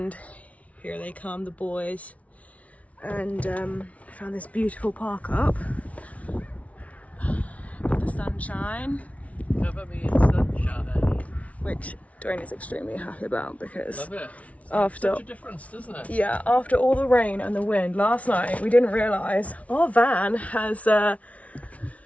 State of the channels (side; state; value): right; late; 0.066 ms